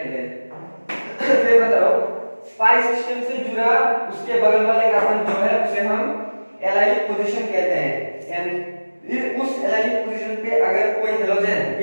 हैं। फिर बताओ पाई सिस्टम से जुड़ा उसके बगल वाले कार्बन जो है उसे हम एलाइलिक पोजीशन कहते हैं। एंड उस एलाइलिक पोजीशन पे अगर कोई halogen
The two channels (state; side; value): inverted; both; correlation -1.00